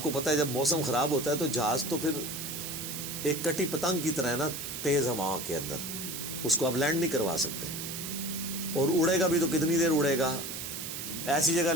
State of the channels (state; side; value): noise; right; hiss, 6 dB below the sound